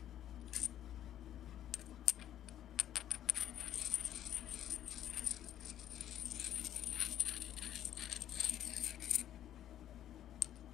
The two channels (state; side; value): quieter; right; 11.4 dB